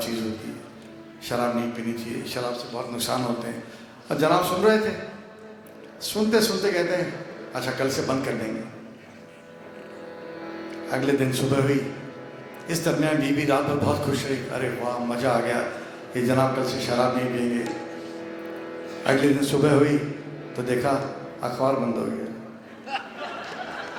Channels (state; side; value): identical; both; correlation 1.00